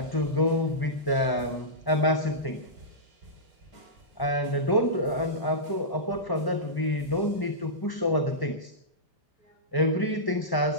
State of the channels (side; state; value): right; late; 1.1 ms